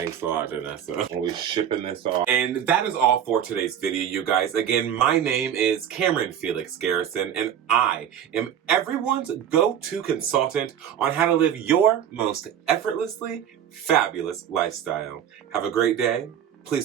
a lot, Danessa. We're shipping this off. And that is all for today's video, you guys. Again, my name is Cameron Felix Garrison, and I am everyone's go-to consultant on how to live your most effortlessly fabulous lifestyle. Have a great day.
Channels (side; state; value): left; quieter; 9.4 dB